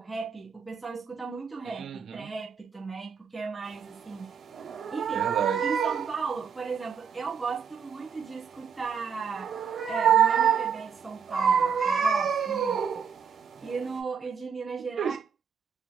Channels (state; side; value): quieter; left; 6.9 dB